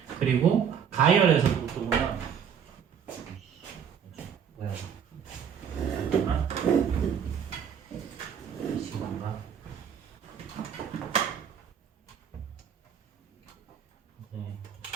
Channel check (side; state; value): left; quieter; 7.8 dB